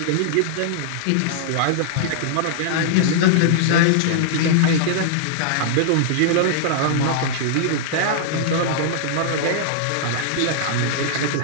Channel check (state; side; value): different; both; correlation -0.01